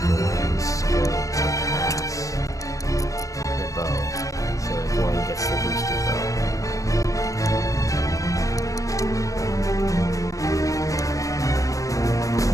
skill to pass the bow. So that Gawain gets the boosted bow.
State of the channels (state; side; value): late; right; 0.16 ms